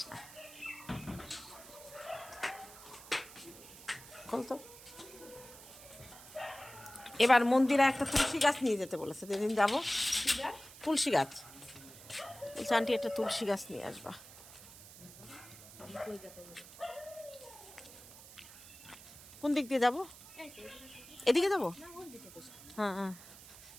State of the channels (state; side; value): noise; right; hiss, 18 dB below the sound